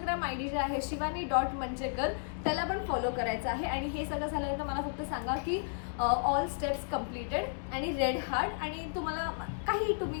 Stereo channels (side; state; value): right; silent; digital silence